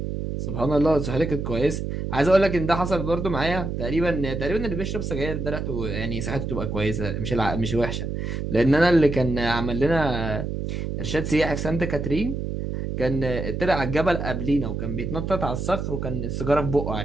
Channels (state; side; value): noise; right; hum, 3 dB below the sound